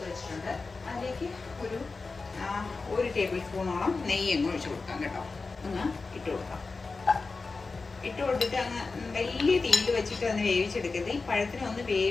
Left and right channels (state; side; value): quieter; right; 4.1 dB